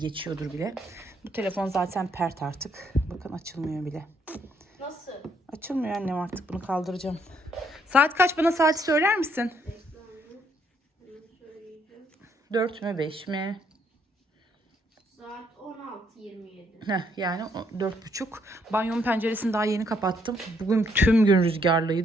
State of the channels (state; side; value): normal; both; correlation 0.71